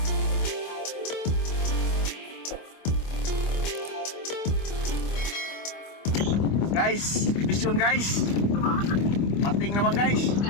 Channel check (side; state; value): right; late; 25 ms